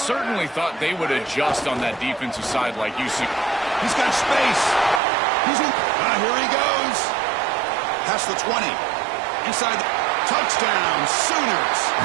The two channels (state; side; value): drops out; left; at 5.0 s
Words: thought they would adjust on that defensive side like you see. He's got space. He's in. Here he goes. Past the 20. Inside. Touchdown, Sooners.